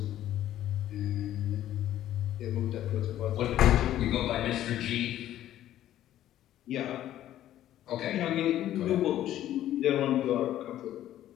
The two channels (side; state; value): right; quieter; 12.7 dB